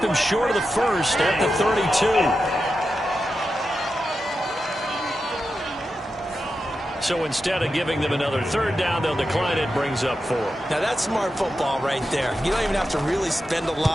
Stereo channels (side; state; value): both; normal; correlation 0.90